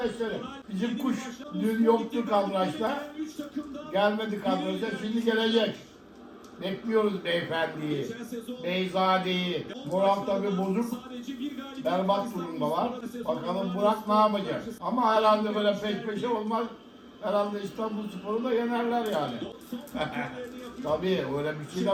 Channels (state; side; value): identical; both; correlation 1.00